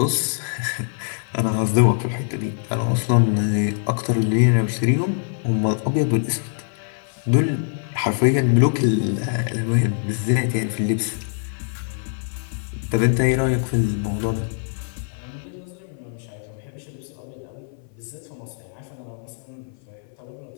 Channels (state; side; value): silent; right; 57 dB below the other